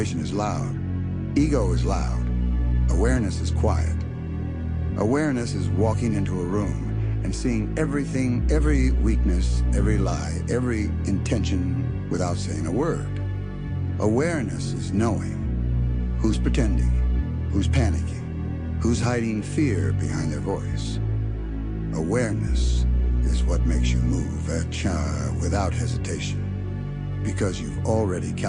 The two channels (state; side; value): identical; both; correlation 1.00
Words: is loud. Ego is loud. Awareness is quiet. Awareness is walking into a room and seeing everything, every weakness, every lie, every intention without saying a word. Awareness is knowing who's pretending, who's panicking, who's hiding fear behind their voice. Awareness is what makes you move without hesitation, because you've already